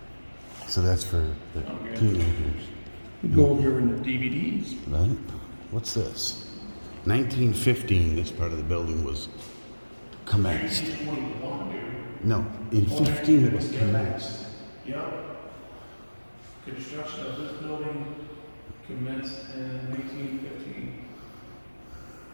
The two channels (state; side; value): inverted; both; correlation -1.00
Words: So that's for the Okay. teenagers, We go over here in the DVDs. right? What's this? 1915, this part of the building was commenced. 1921, dude. No, in 15 it was commenced. Yep. Construction of this building commenced in 1915.